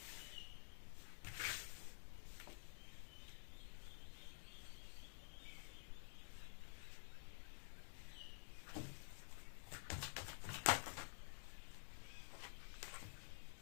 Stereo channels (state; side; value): silent; right; digital silence